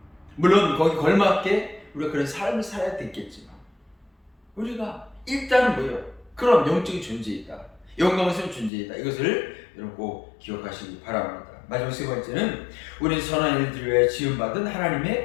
물론 거기 걸맞게 우리가 그런 삶을 살아야 되겠지만, 우리가 일단은 뭐예요? 그런 영적인 존재이다, 영광스러운 존재이다, 이것을 여러분 꼭 기억하시기 바랍니다. 마지막 세 번째는 우리는 선한 일들을 위해 지음받은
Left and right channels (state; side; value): drops out; right; at 8.7 s